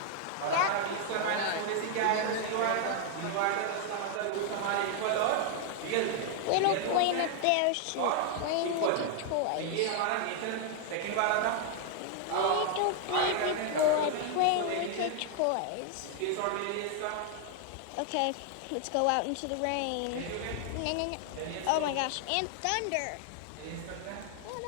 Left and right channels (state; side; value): different; both; correlation 0.00